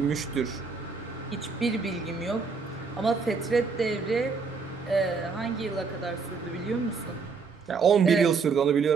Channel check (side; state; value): left; quieter; 4.9 dB